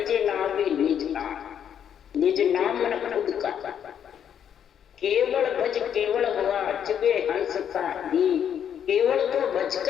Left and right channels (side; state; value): right; quieter; 8.9 dB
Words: नाम भी निज नाम। निज नाम मन खुद का, केवल भज केवल हुआ चुबे हंस का दी, केवल तो